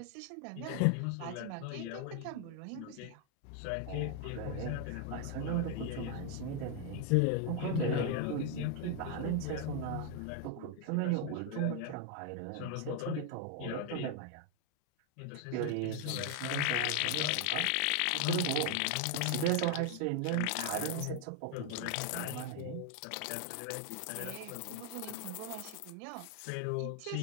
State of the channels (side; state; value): both; different; correlation 0.01